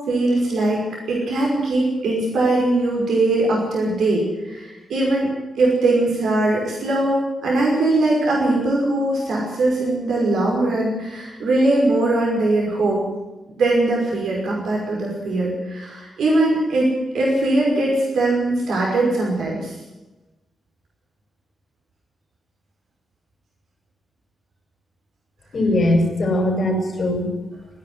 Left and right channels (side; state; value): both; normal; correlation 0.80